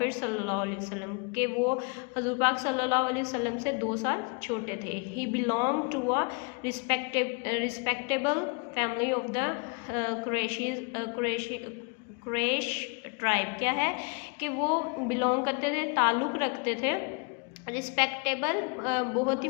सल्लल्लाहु अलैहि वसल्लम, के वो हज़ूर पाक सल्लल्लाहु अलैहि वसल्लम से 2 साल छोटे थे। He belong to a respectable family of the Quraysh tribe. क्या है कि वो बिलोंग करते थे, ताल्लुक़ रखते थे रिस्पेक्टेबल बहुत ही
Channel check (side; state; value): right; quieter; 34.7 dB